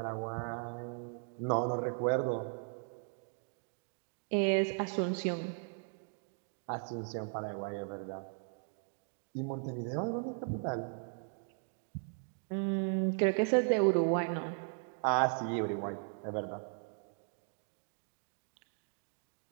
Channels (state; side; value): silent; left; 53 dB below the other